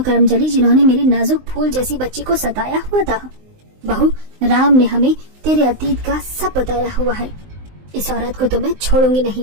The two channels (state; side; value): late; left; 19 ms